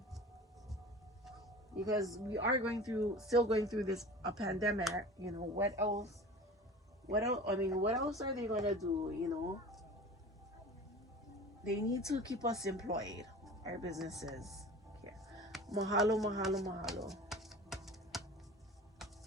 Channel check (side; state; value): both; normal; correlation 0.37